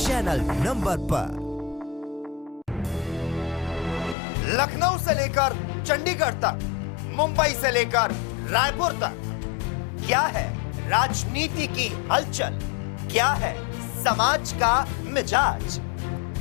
number पर। लखनऊ से लेकर चंडीगढ़ तक, मुंबई से लेकर रायपुर तक, क्या है राजनीति की हलचल, क्या है समाज का मिजाज।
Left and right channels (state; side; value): drops out; right; at 4.2 s